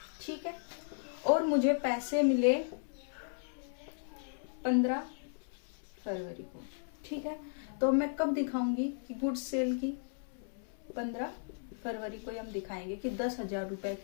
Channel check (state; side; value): silent; right; 54 dB below the other